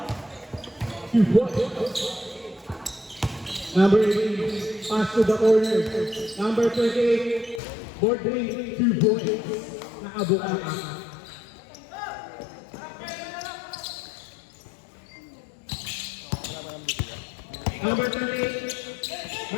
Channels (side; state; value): right; drops out; at 7.6 s